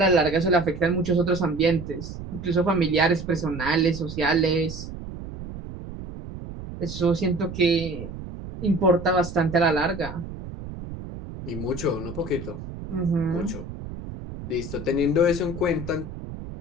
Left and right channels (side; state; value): right; noise; rumble, 10 dB below the sound